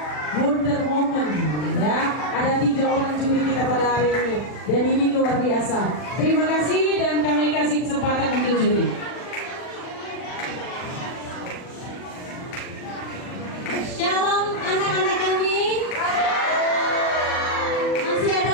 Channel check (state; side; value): late; right; 40 ms